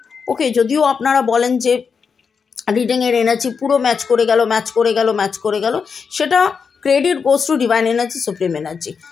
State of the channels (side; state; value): right; quieter; 5.8 dB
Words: ওকে, যদিও আপনারা বলেন যে রিডিংয়ের এনার্জি পুরো ম্যাচ করে গেল, সেটা credit goes to divine energy, supreme energy.